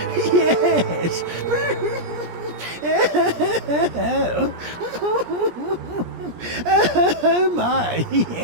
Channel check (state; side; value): late; left; 17 ms